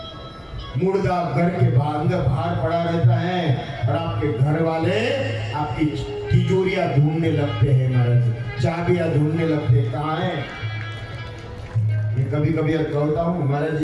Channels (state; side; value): identical; both; correlation 1.00